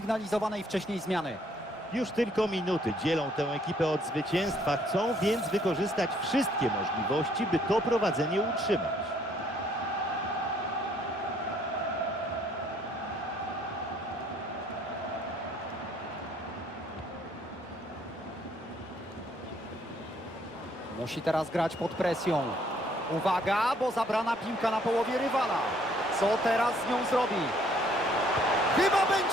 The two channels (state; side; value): normal; both; correlation 0.64